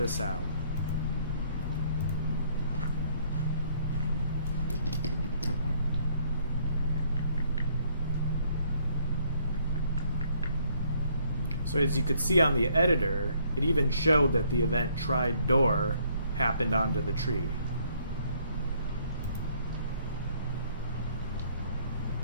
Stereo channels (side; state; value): both; inverted; correlation -0.66